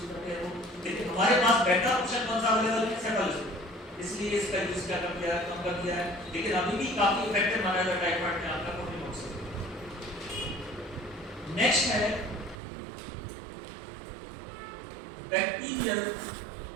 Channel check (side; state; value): left; drops out; at 12.6 s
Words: करते हैं वो, लेकिन हमारे पास बेटर ऑप्शन कौन सा अवेलेबल है? सेफालोस्कोपिस। इसलिए इसका यूज क्या कर दिया है? कम कर दिया है, लेकिन अभी भी काफी इफेक्टिव माना जाता है टाइफाइड में आपका कोल्डिमोक्सामोल। नेक्स्ट है बैक्टीरियल